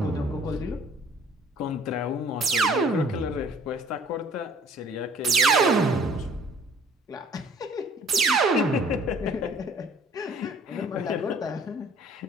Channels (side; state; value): both; normal; correlation 0.55